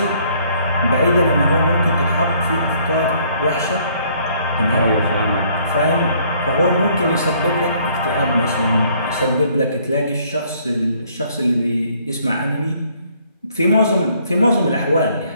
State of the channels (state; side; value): inverted; both; correlation -0.63